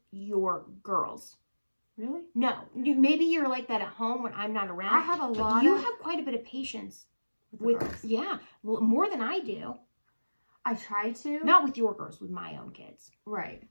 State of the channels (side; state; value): both; inverted; correlation -1.00